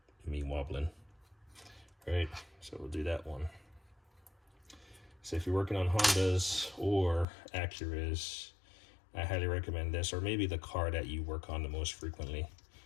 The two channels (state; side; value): drops out; right; at 7.2 s